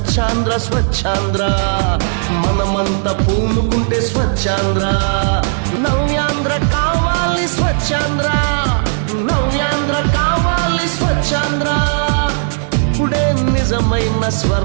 స్వచ్ఛాంధ్ర మనమంతా పూనుకుంటే స్వచ్ఛాంధ్ర నవ్యాంధ్ర కావాలి స్వచ్ఛాంధ్ర నవ్యాంధ్ర కావాలి స్వచ్ఛాంధ్ర ఇప్పుడే నిజమైన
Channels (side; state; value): left; silent; digital silence